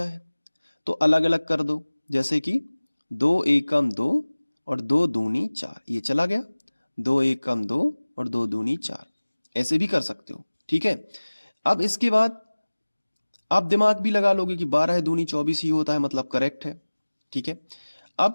है तो अलग अलग कर दो, जैसे कि 2 एकम 2 और 2 दूनी 4, ये चला गया। 2 एकम 2 और 2 दूनी 4, ऐसे भी कर सकते हो। ठीक है, अब इसके बाद आप दिमाग भी लगा लोगे कि 12 दूनी 24 ही होता है, मतलब करेक्ट है। ठीक है,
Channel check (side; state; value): both; inverted; correlation -1.00